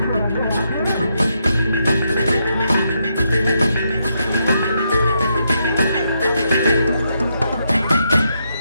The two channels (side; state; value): both; inverted; correlation -0.79